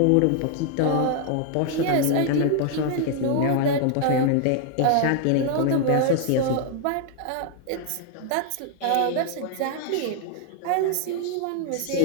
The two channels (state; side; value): different; both; correlation 0.00